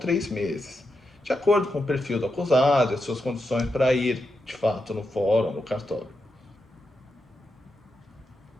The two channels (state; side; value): normal; both; correlation 0.86